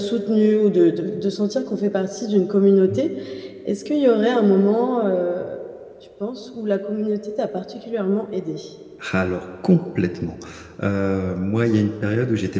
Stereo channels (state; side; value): identical; both; correlation 1.00